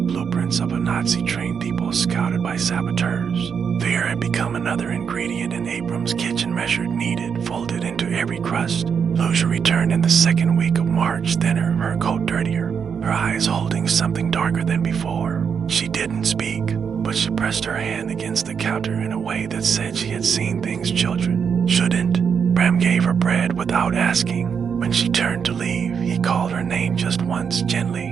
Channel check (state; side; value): quieter; left; 6.8 dB